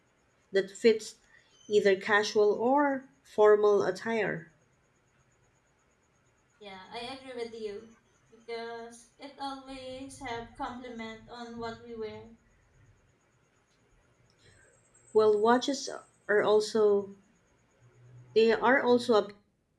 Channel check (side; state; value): both; identical; correlation 1.00